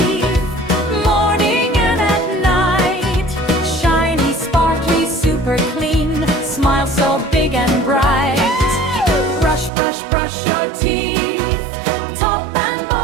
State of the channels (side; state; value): left; drops out; at 9.7 s